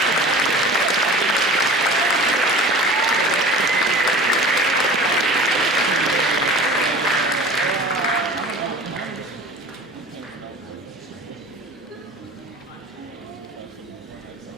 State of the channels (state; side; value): normal; both; correlation 0.40